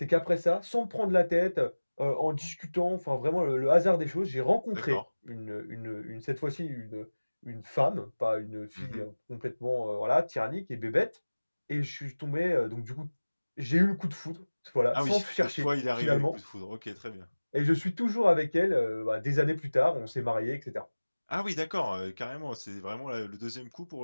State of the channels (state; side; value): inverted; both; correlation -1.00